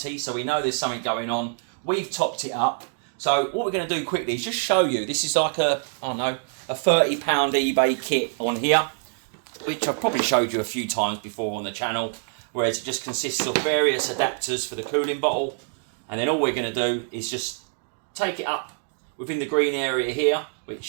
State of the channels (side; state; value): left; silent; digital silence